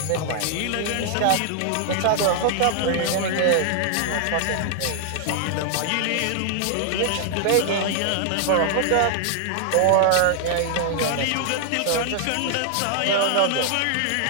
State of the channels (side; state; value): both; different; correlation 0.00